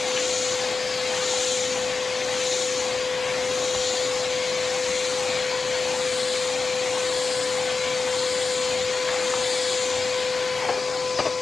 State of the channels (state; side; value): quieter; right; 4.3 dB